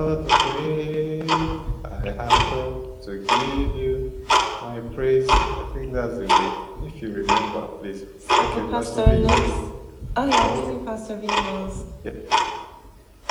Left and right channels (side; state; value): both; identical; correlation 1.00